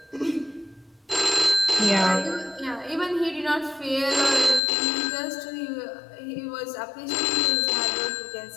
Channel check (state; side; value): drops out; right; at 4.6 s